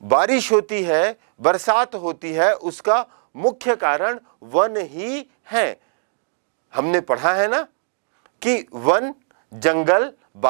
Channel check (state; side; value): silent; left; 59 dB below the other